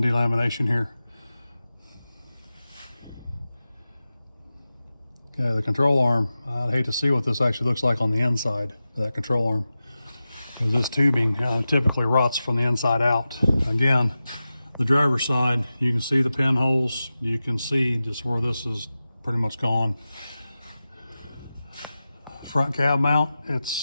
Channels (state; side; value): inverted; both; correlation -0.94